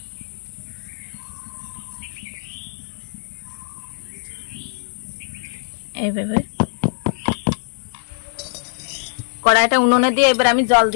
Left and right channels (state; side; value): silent; right; digital silence